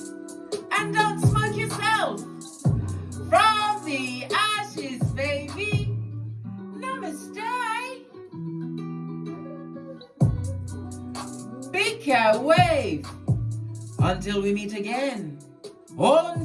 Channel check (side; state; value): both; identical; correlation 1.00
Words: And don't smoke yourself. From the ashes, baby. Namaste. Big cat wave. Until we meet again on